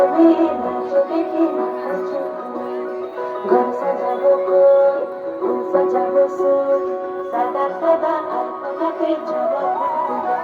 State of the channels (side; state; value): both; identical; correlation 1.00